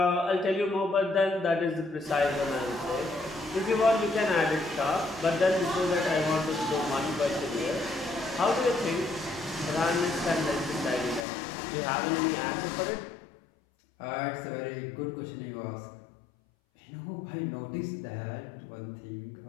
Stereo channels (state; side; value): drops out; right; at 11.2 s